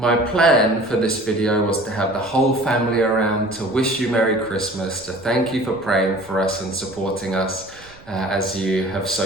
plan for this video was to have the whole family around to wish you Merry Christmas, to thank you for praying for us and supporting us as you have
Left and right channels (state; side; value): noise; right; rumble, 24 dB below the sound